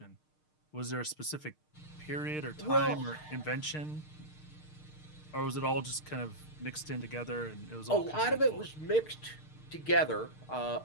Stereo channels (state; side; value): late; right; 6.5 ms